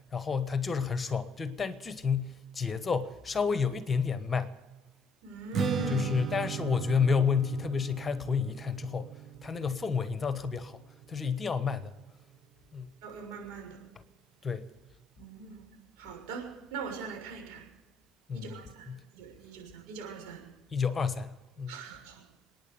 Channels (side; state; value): right; quieter; 3.9 dB